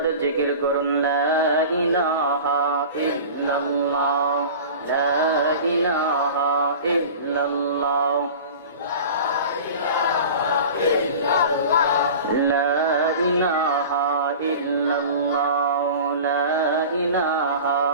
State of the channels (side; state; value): both; inverted; correlation -0.37